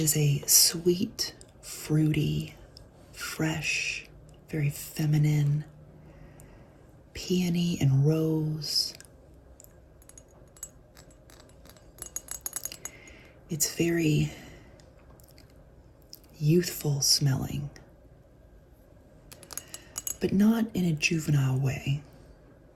a sweet, fruity, fresh, very feminine, peony and rose. It's very youthful smelling, but not in a juvenile way.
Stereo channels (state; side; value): identical; both; correlation 1.00